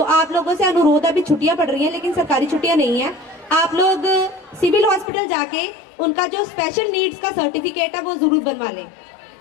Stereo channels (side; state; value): right; drops out; at 5.1 s